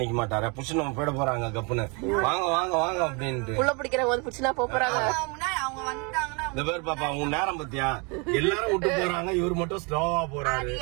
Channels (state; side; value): quieter; left; 32.0 dB